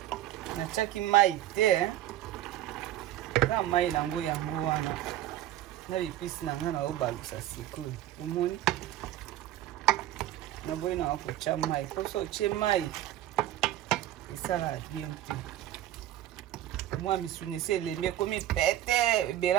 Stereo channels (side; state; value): left; quieter; 13.3 dB